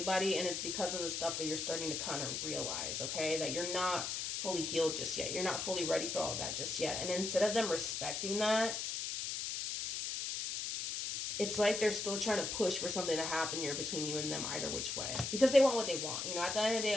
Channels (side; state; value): left; noise; hiss, 3 dB below the sound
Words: and it's because of the stuff that you're starting to kind of realize, okay? That you're not fully healed just yet. You're not fully ready for all of that just yet. And instead of them respecting that, it's like they're still trying to push for something to happen here between you and them either which way. Because they want what they want. You know, at the end of the day,